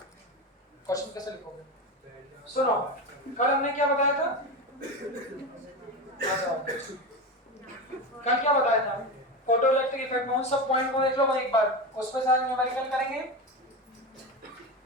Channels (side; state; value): both; normal; correlation 0.21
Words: क्वेश्चन कैसे लिखोगे? सुनो, कल हमने क्या बताया था? कल क्या बताया था? फोटो इलेक्ट्रिक इफेक्ट में उन सब पॉइंट को देख लो एक बार, उस पे सारे न्यूमेरिकल करेंगे।